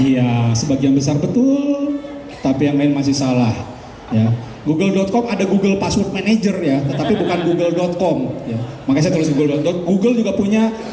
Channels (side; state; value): both; identical; correlation 1.00